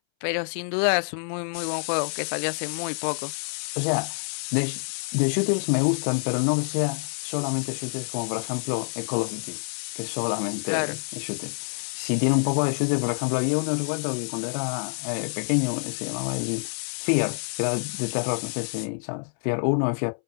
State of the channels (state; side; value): silent; right; 60 dB below the other